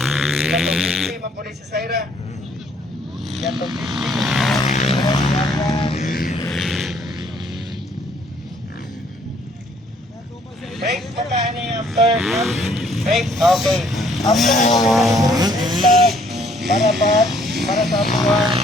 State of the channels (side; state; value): both; normal; correlation 0.63